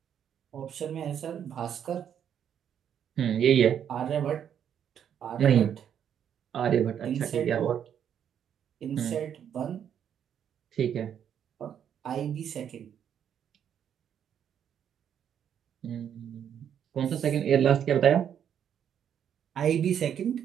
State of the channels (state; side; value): quieter; left; 8.9 dB